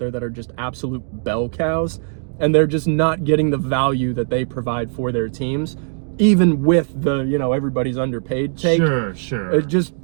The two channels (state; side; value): silent; left; 66 dB below the other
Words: that are just absolute bell cows, and they're just not getting the value that they provide for their teams, even with the, everybody's underpaid take. Sure. Just